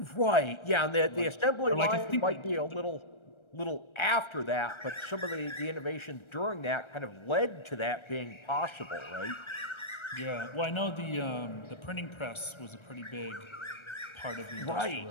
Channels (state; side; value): late; right; 1.3 ms